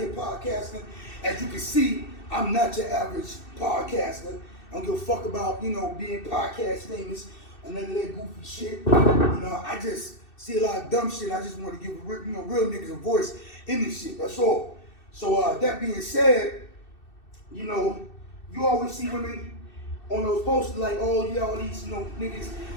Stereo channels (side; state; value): right; late; 2.6 ms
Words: podcasting. As you can see, I'm not your average podcaster. I don't give a fuck about, being podcast famous or none of that goofy shit. I just see a lot of dumb shit. I just want to give real niggas a voice in this shit. That's all. So that being said, you always see women on those posters like, oh yeah, all these niggas